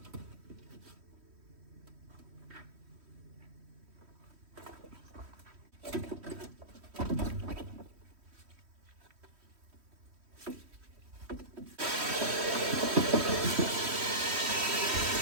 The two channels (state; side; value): late; left; 3.1 ms